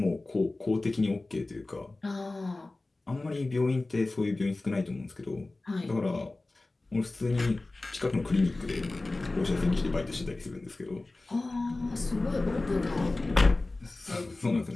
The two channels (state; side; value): quieter; right; 3.1 dB